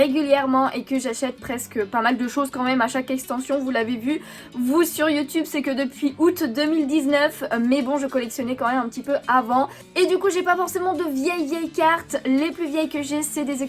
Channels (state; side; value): identical; both; correlation 1.00